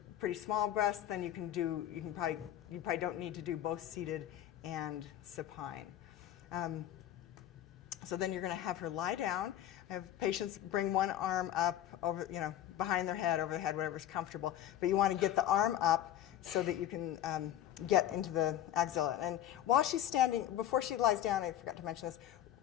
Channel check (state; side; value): quieter; right; 11.7 dB